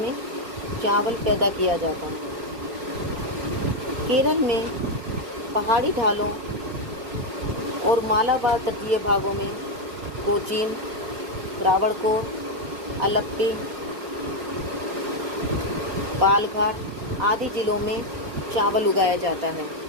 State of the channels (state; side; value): late; left; 4.3 ms